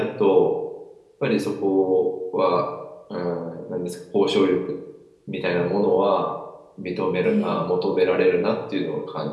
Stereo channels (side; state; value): both; identical; correlation 1.00